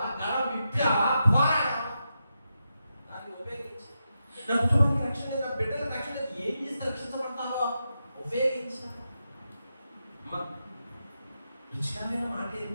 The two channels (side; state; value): both; inverted; correlation -0.87